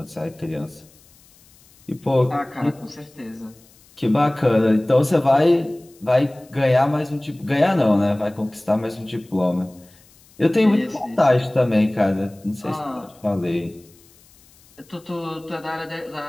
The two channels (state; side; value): noise; left; hiss, 28 dB below the sound